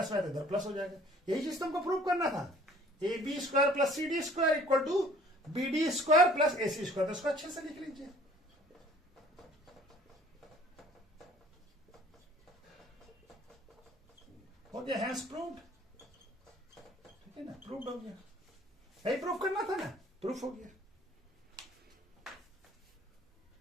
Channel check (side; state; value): both; normal; correlation 0.53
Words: में इधर प्लस हो जाएगा। यही चीज तुमको प्रूव करना था, AB square plus CD square equal to BD square plus AC square. तो इसको अच्छे से लिख लीजिए। हो गया, हैंस प्रूव्ड। ठीक है ना, प्रूव्ड हो गया। यही प्रूफ करना था ना, प्रूफ हो गया।